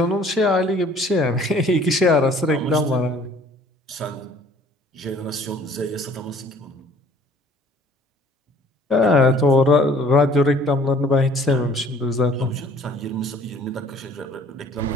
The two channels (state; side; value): normal; both; correlation 0.55